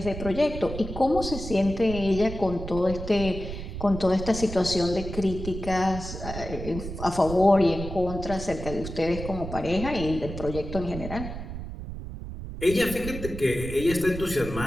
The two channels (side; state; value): right; noise; rumble, 8 dB below the sound